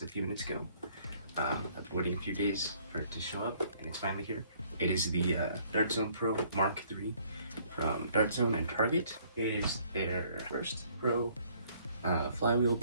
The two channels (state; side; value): inverted; both; correlation -0.62